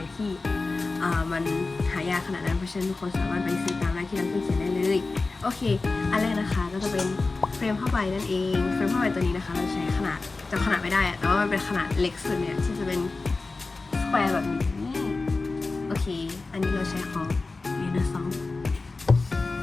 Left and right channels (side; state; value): right; quieter; 3.7 dB